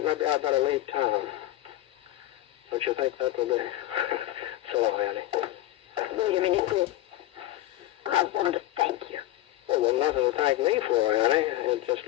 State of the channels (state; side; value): quieter; right; 14.9 dB